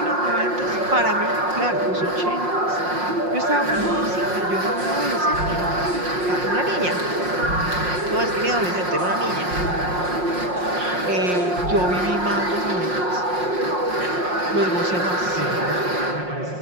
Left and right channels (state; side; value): late; left; 5.6 ms